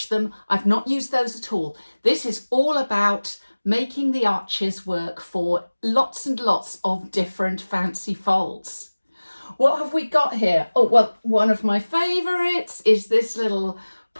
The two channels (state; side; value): inverted; both; correlation -1.00